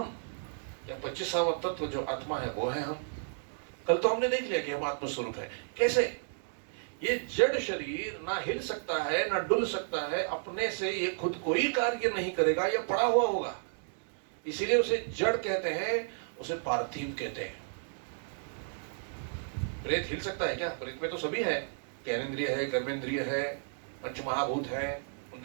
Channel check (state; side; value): silent; left; digital silence